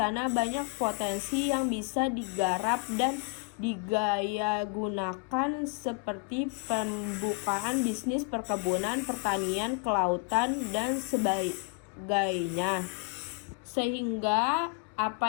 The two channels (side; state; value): right; quieter; 33.9 dB